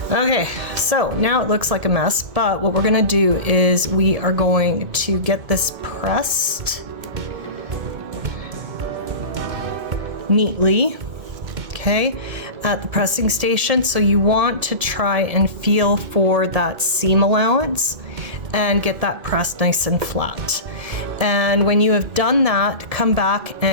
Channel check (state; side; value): late; left; 1.7 ms